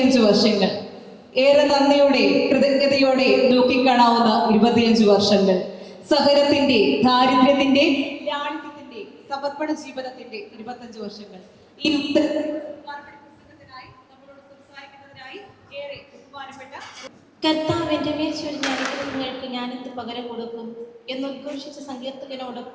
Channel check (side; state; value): both; identical; correlation 1.00